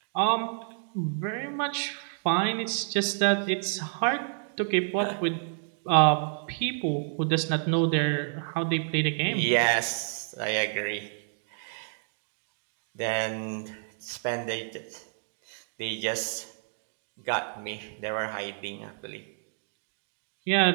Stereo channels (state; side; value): silent; left; digital silence